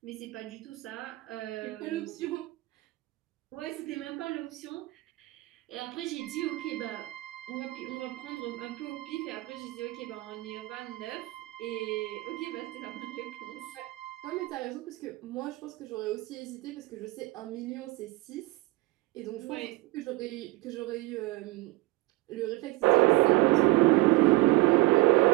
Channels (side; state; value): left; quieter; 20.4 dB